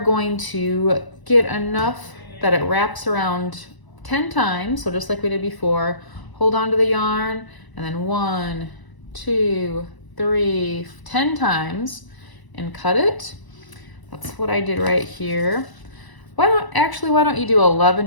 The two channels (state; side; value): late; right; 1.0 ms